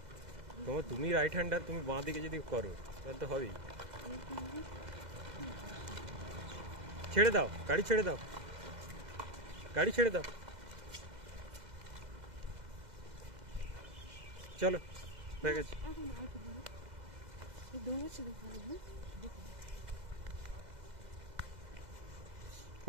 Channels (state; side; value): late; left; 2.0 ms